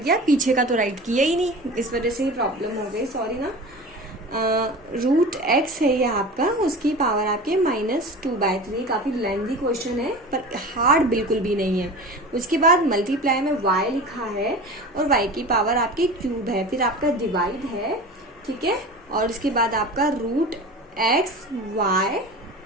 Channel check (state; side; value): normal; both; correlation 0.34